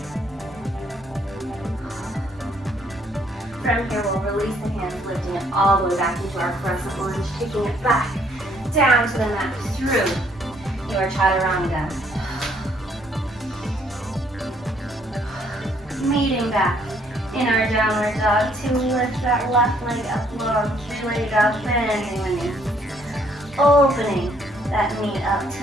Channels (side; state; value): both; normal; correlation 0.66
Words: From here, we'll release the hands, lifting it all the way back into our crescent lunge, taking it back down to the mat through your chaturanga. Meeting back in our downward dog to lift that left leg up long, three-legged dog, bending the knee. Opening that knee up,